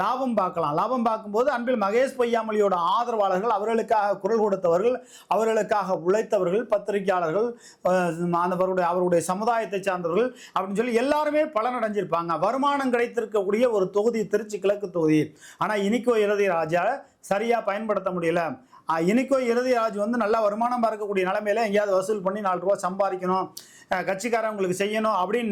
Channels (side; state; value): both; identical; correlation 1.00